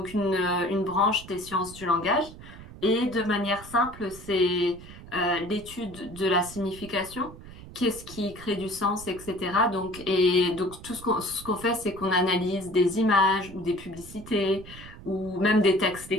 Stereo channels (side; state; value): right; noise; rumble, 16 dB below the sound